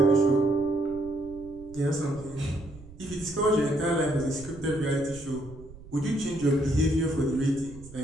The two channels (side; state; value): right; noise; rumble, 18 dB below the sound